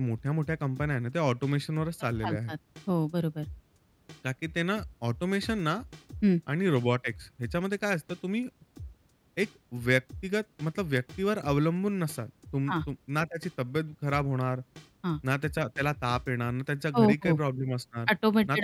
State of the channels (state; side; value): identical; both; correlation 1.00